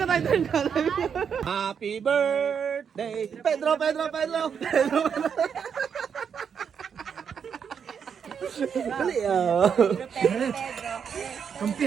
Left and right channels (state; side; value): quieter; left; 7.1 dB